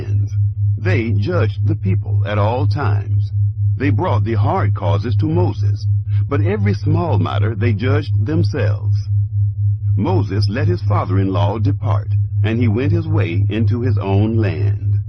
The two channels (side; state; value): both; identical; correlation 1.00